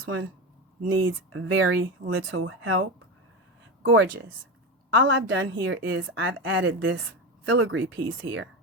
one? Needs very little help. Gorgeous. All I've done here is I've added this filigree piece here.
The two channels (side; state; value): both; normal; correlation 0.19